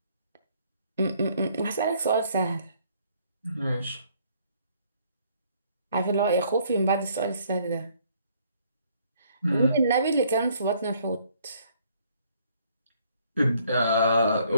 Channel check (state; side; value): inverted; both; correlation -0.64